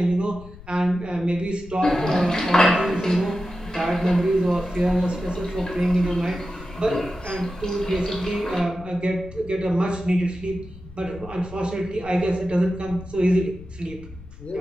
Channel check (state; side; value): noise; left; rumble, 17 dB below the sound